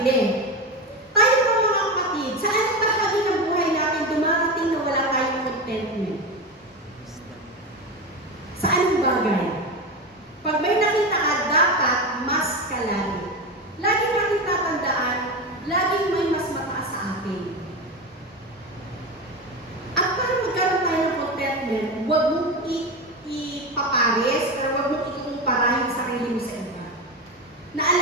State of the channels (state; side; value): normal; both; correlation 0.19